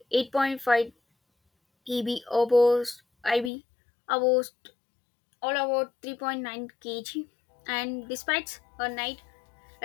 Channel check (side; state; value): right; drops out; at 3.5 s